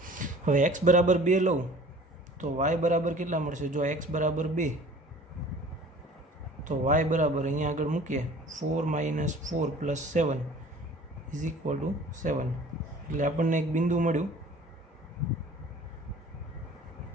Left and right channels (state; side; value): normal; both; correlation 0.47